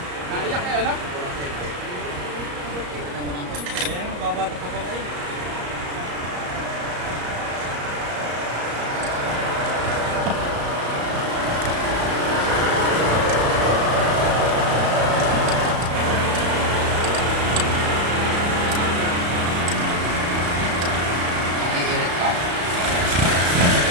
naiyak eh, ano? Ayan, babata pa pala eh.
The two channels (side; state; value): left; late; 34 ms